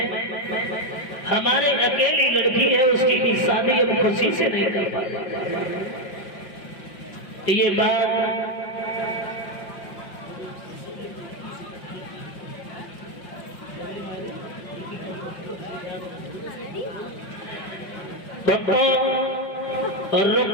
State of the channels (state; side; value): late; right; 5.0 ms